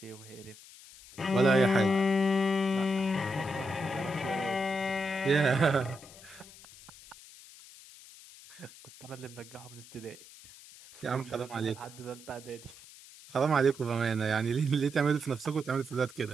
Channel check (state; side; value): noise; left; hiss, 19 dB below the sound